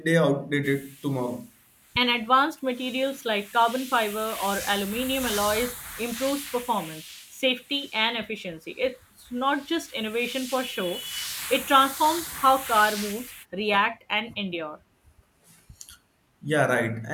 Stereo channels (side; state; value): both; identical; correlation 1.00